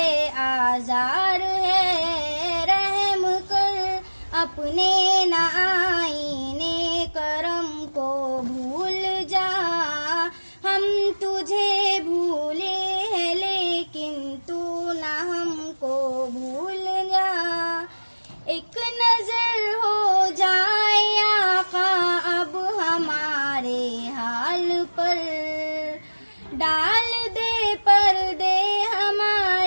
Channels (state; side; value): inverted; both; correlation -1.00